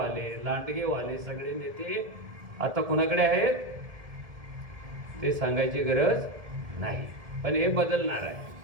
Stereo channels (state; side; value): late; left; 1.7 ms